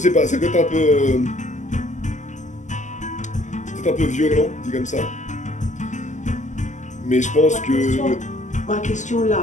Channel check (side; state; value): right; late; 0.35 ms